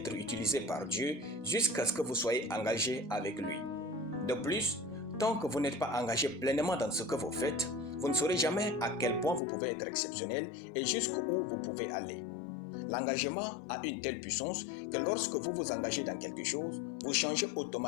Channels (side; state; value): right; drops out; at 9.4 s